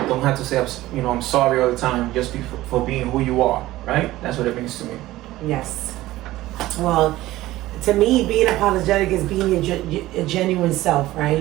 don't have to say, I'm sorry all the time. Just be for being who you are, right? That's what it means to me. Yes. Well, to me, being apologetic is being a genuine self,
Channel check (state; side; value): quieter; left; 16.5 dB